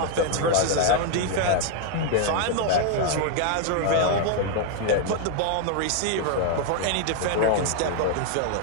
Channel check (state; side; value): different; both; correlation 0.00